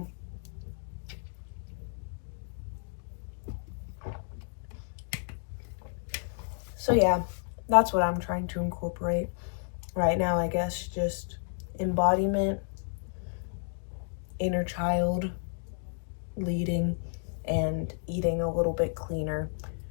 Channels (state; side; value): silent; right; digital silence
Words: yeah, that's what I'm trying to incorporate right now, I guess, just embodiment, inner child, leading, and eating a little bit cleaner.